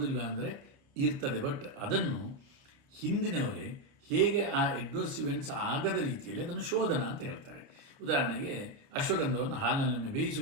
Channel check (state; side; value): late; left; 29 ms